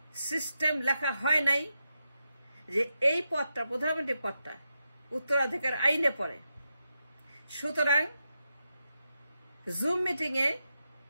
সিস্টেম লেখা হয় নাই যে এই পদটা, প্রধানমন্ত্রী পদটা উত্তরাধিকার আইনে পড়ে। সুতরাং জুম মিটিং এ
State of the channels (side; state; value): both; inverted; correlation -0.86